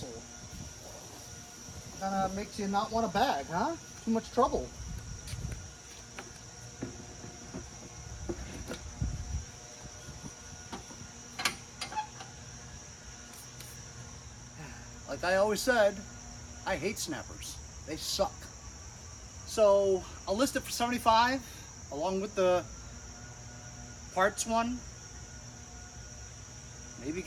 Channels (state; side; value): identical; both; correlation 1.00